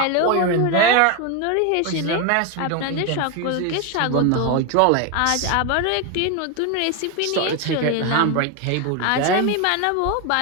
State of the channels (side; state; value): both; different; correlation 0.02